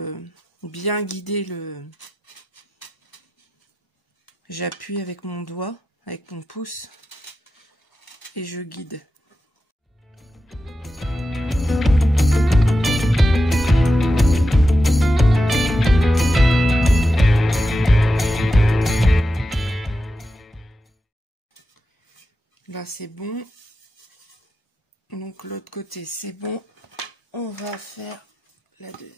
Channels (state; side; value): normal; both; correlation 0.90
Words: bien guider le... J'appuie avec mon doigt, avec mon pouce. Et je guide. Là c'est bon. Donc l'autre côté c'est bon. On va faire la deux.